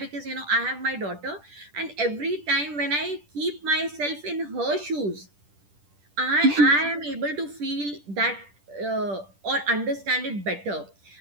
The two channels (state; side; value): late; left; 10 ms